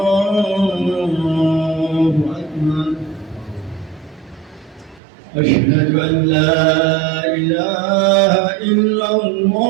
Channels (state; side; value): drops out; left; at 5.0 s